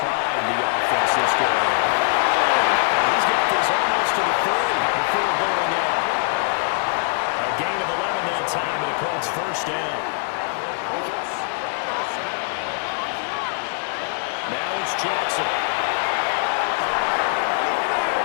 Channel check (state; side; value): silent; right; 64 dB below the other